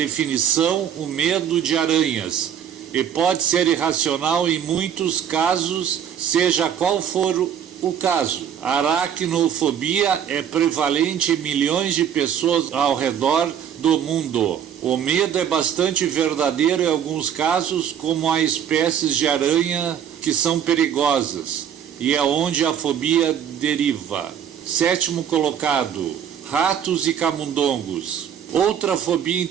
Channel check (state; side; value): quieter; left; 8.8 dB